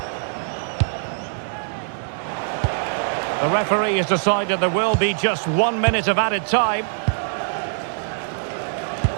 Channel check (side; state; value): left; silent; digital silence